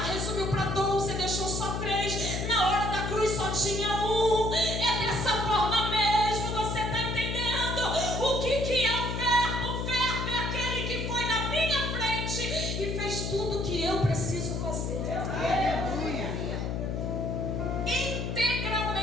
para 12, deixou só 3, na hora da cruz só tinha um. É dessa forma mesmo, você está entendendo o que é o verbo? O verbo é aquele que foi na minha frente e fez tudo o que eu preciso fazer.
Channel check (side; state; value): left; noise; hum, 2 dB below the sound